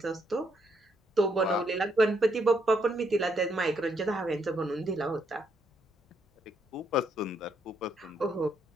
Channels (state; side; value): normal; both; correlation 0.75